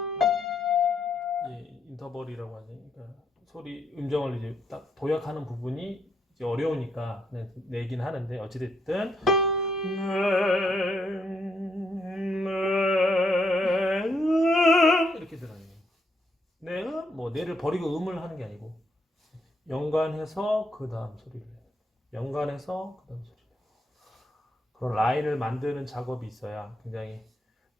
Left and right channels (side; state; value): both; normal; correlation 0.76